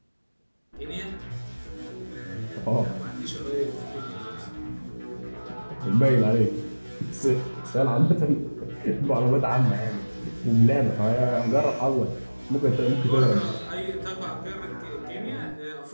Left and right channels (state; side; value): inverted; both; correlation -1.00